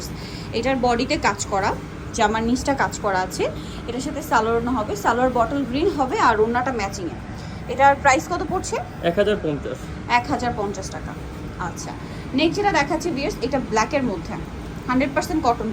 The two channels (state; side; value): identical; both; correlation 1.00